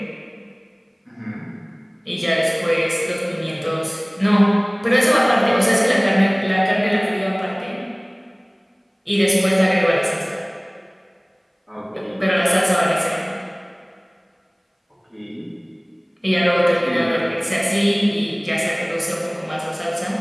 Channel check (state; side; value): identical; both; correlation 1.00